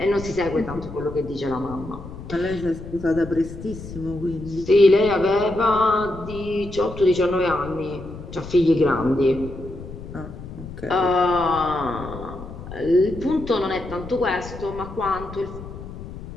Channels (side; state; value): left; noise; rumble, 12 dB below the sound